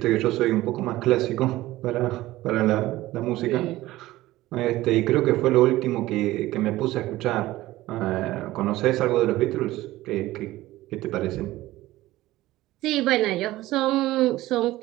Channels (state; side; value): quieter; left; 16.9 dB